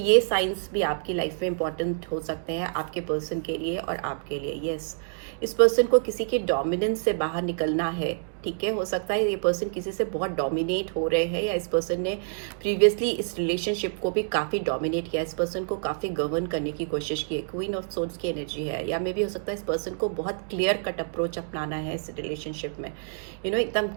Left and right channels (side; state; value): left; silent; digital silence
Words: साइंस भी आपकी लाइफ में इंपॉर्टेंट हो सकते हैं आपके पर्सन के लिए और आपके लिए। यस, इस पर्सन को किसी के डोमिनेंस से बाहर निकलना है, ठीक है। हो सकता है ये पर्सन किसी से बहुत डोमिनेट हो रहे हैं, या इस पर्सन ने प्रीवियसली इस रिलेशनशिप को भी काफ़ी डोमिनेट किया, इस पर्सन को काफ़ी गवर्न करने की कोशिश की। क्वीन ऑफ सोर्ड्स की एनर्जी है, या मे भी हो सकता है इस पर्सन को बहुत क्लियर कट अप्रोच अपनाना है इस रिलेशनशिप में, एकदम